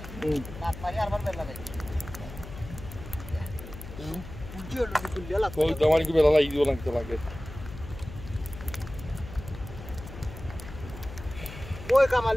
রাত মারি আরবার বেলা লাগাই পুজি হলো কুলিয়া লাগতো কই তোমার কি বেলা লাগি দিও লাগতে লাগে ওই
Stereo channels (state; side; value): noise; left; hum, 13 dB below the sound